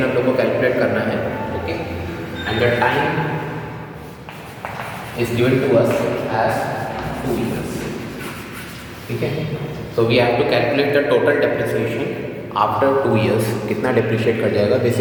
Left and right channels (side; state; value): both; identical; correlation 1.00